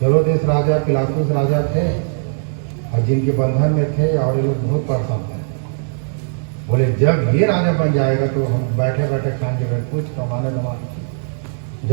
हेरोदेस राजा, पिलातुस राजा थे और जिनके बंधन में थे, और ये लोग बहुत परेशान थे। बोले जब ये राजा बन जाएगा तो हम बैठे बैठे खाएंगे, कुछ कमाने की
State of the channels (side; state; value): left; silent; 63 dB below the other